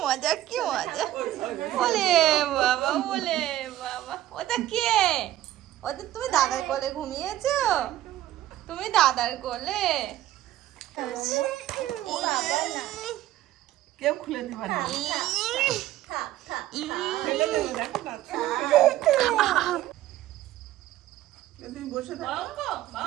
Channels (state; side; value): quieter; left; 13.8 dB